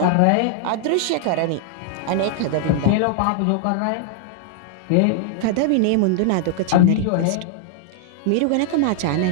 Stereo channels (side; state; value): both; different; correlation -0.01